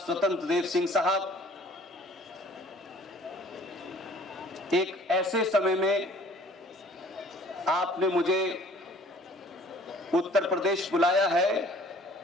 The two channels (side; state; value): both; normal; correlation 0.53